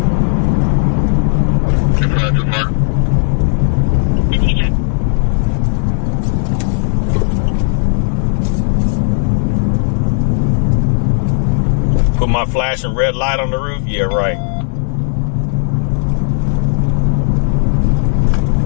Put my flashing red light on the roof? Yeah, right.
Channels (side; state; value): right; silent; 68 dB below the other